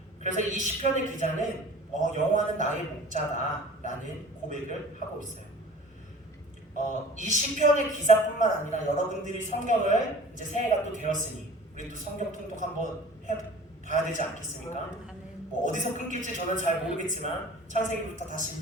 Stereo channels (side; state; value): both; normal; correlation 0.44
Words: 그래서 이 시편의 기자는 여호와는 나의 목자다라는 고백을 하고 있어요. 이 시편의 기자뿐만 아니라 여러분들이 성경을 이제 새해가 또 되었으니 우리 또 성경 통독 한번 해봐야 되지 않겠습니까? 뭐 어디서 끊길지 저는 잘 모르겠지만 창세기부터 다시